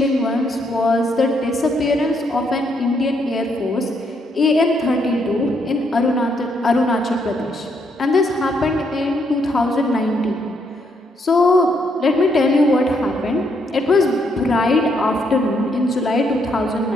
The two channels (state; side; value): normal; both; correlation 0.74